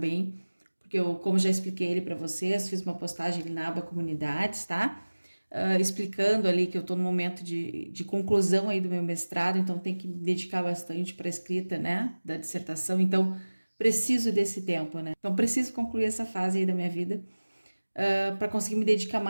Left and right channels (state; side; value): inverted; both; correlation -1.00